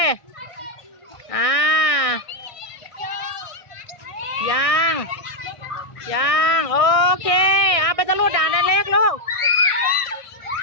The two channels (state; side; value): late; right; 1.6 ms